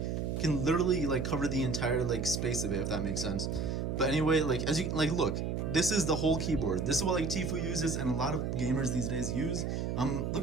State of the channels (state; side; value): noise; right; hum, 1 dB below the sound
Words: can literally like cover the entire like space of it, if that makes sense. But anyway, like as you like look, this is the whole keyboard. This is what like Tfue uses and a lot of gamers these days use.